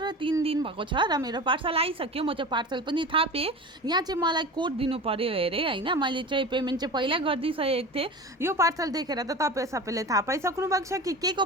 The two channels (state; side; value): normal; both; correlation 0.32